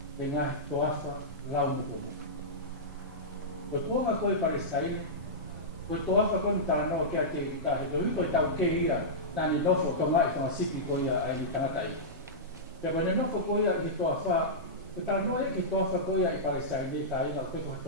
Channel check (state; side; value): normal; both; correlation -0.13